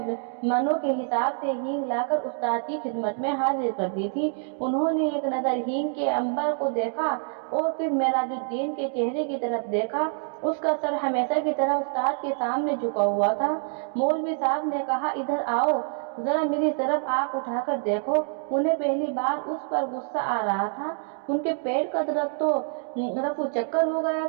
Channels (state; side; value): silent; left; 61 dB below the other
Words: मनों के हिसाब से हींग लाकर उस्ताद की खिदमत में हाजिर कर दी थी। उन्होंने एक नज़र हींग के अंबर को देखा और फिर मेराजुद्दीन के चेहरे की तरफ देखा। उसका सर हमेशा की तरह उस्ताद के सामने झुका हुआ था। मौलवी साहब ने कहा, इधर आओ, जरा मेरी तरफ आंख उठाकर देखो। उन्हें पहली बार उस पर गुस्सा आ रहा था। उनके पेट का दर्द तो रफू चक्कर हो गया